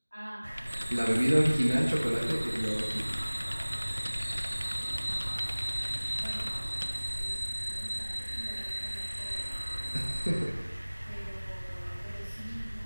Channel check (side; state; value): both; inverted; correlation -1.00